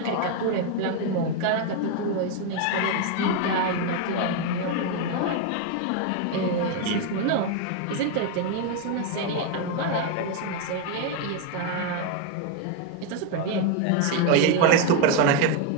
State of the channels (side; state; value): both; different; correlation 0.01